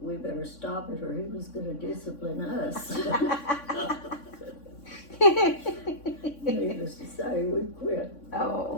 we better stop it or he was gonna discipline us. Needless to say, we quit.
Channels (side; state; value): right; late; 3.6 ms